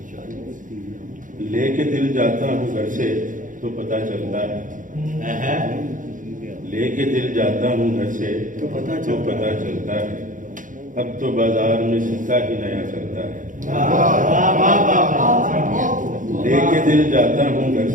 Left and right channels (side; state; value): left; late; 0.38 ms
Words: لے کے دل جاتا ہوں گھر سے تو پتہ چلتا ہے، لے کے دل جاتا ہوں گھر سے تو پتہ چلتا ہے، اب تو بازار میں سکہ ہی نیا چلتا ہے، لے کے دل جاتا ہوں گھر